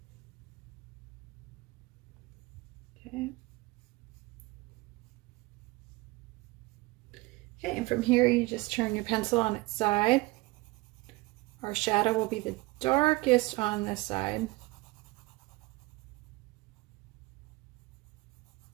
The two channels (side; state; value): left; quieter; 22.0 dB